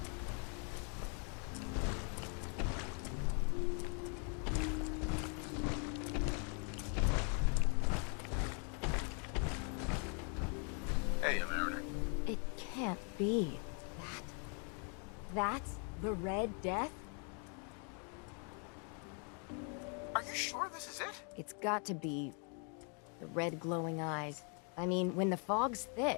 Hey, Mariner. It can't be. That's the Red Death? Are you sure this is it? It's got to be. The red glowing eyes. I mean, when the fog's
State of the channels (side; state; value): right; quieter; 39.9 dB